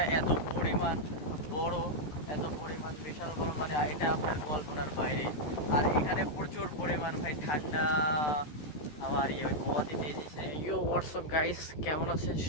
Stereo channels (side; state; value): right; late; 13 ms